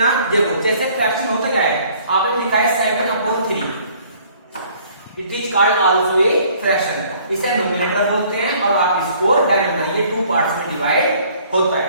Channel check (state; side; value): inverted; both; correlation -0.58